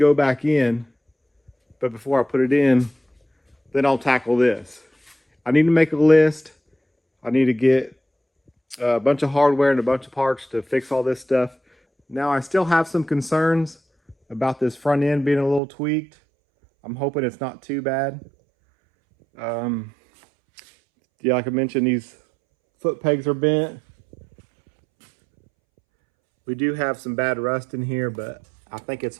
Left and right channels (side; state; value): left; drops out; at 15.6 s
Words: back in. But before I put it in, then I'll tackle this. I need to make a list. I need to get a bunch of hardware and a bunch of parts to fix all this stuff. Now I still have some concerns about this front end being a little tweaked. I'm hoping it's not too bad. Yeah, like I mentioned, these foot pegs are bent. We do have some bad rust in here, but I think it's